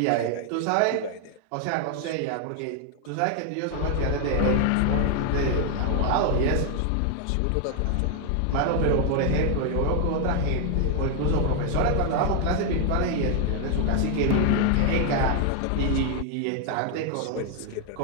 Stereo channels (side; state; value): both; different; correlation 0.00